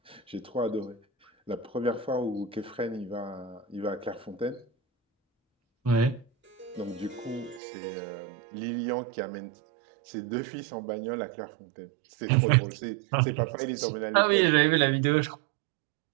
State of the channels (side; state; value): left; drops out; at 7.6 s